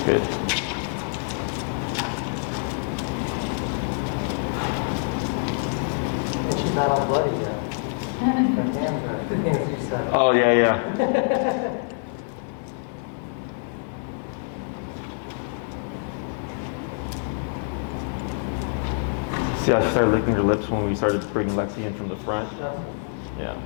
Good. And she's not all bloody yet. Her hands are, the things you said. Oh, yeah. See, I started licking her lips when we started bringing Lexi in from the front. Yeah,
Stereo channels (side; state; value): right; silent; digital silence